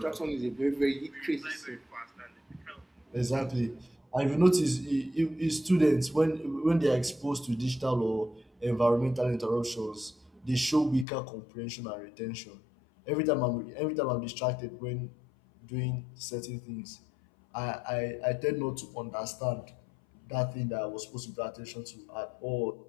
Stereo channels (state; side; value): drops out; right; at 11.1 s